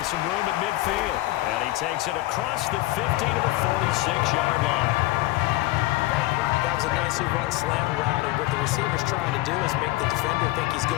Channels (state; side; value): quieter; right; 18.4 dB